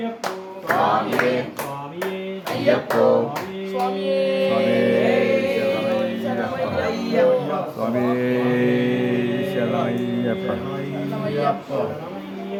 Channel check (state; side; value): identical; both; correlation 1.00